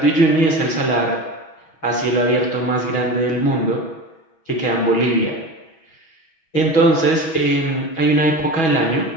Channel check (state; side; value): late; right; 6.2 ms